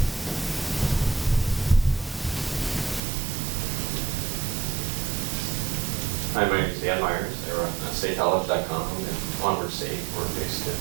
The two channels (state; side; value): drops out; left; at 3.0 s